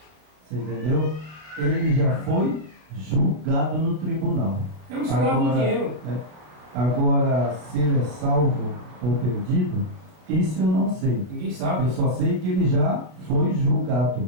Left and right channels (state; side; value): late; left; 33 ms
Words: você entendeu? Ele já foi julgado no tribunal. É um escravo do dinheiro. Agora, se ele é salvo ou perdido, isso eu não sei. Ninguém sabe. Eu só sei que ele já foi julgado.